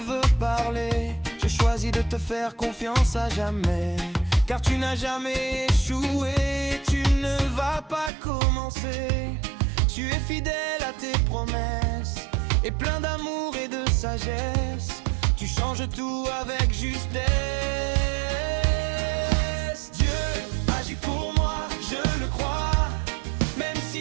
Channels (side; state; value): left; drops out; at 8.1 s